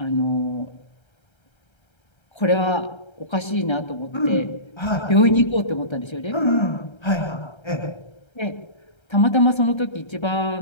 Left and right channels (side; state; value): right; late; 1.3 ms